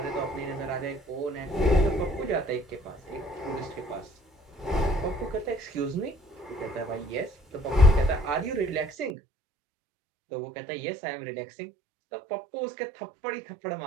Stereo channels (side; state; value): left; drops out; at 9.2 s